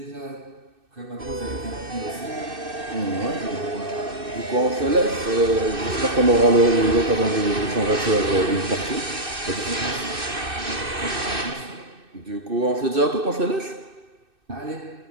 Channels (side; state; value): left; late; 2.6 ms